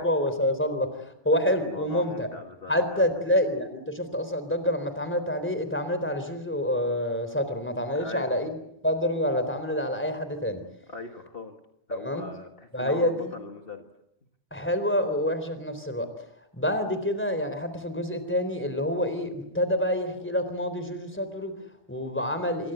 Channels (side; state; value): both; normal; correlation -0.18